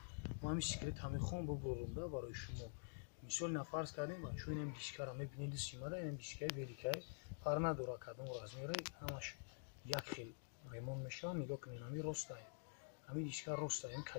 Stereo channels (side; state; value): right; silent; digital silence